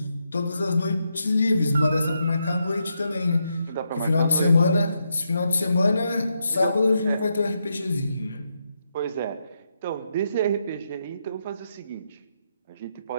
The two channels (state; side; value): inverted; both; correlation -0.82